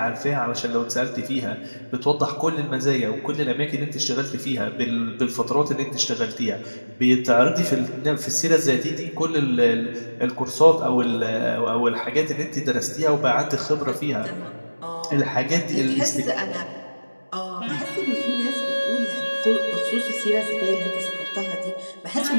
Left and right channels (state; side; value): inverted; both; correlation -1.00